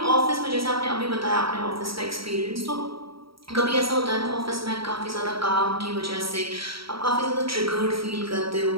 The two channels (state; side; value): late; left; 0.75 ms